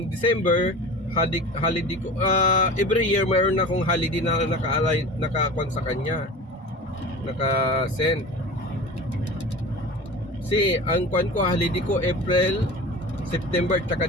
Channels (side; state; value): both; normal; correlation 0.35